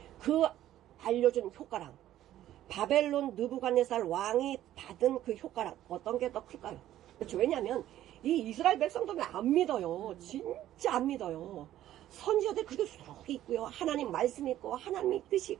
그 알려준 효과랑 바벨론 느부갓네살 왕이 받은 그 효과랑 어떤 게 더 클까요? 그렇죠. 왜냐하면 이 이스라엘 백성들은 안 믿어요. 진짜 안 믿어요. 선지자들 그렇게 수록이 있고요. 하나님 말씀이 있고 하나님의 뜻이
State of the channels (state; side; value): quieter; left; 13.0 dB